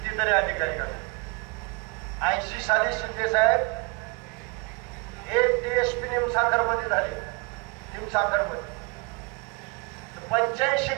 अधिकारी काढले. 80 साली शिंदे साहेब एक DSP निमसाखर मध्ये झाले. निमसाखर मध्ये 85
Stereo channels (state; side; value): quieter; left; 29.9 dB